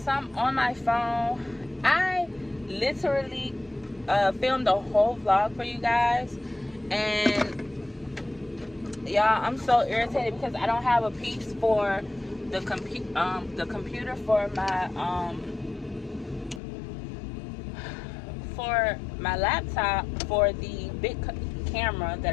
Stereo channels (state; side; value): drops out; right; at 16.6 s